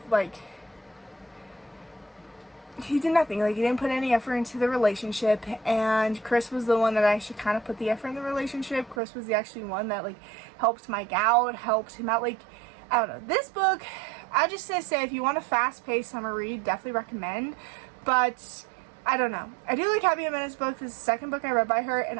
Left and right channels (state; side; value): drops out; left; at 9.0 s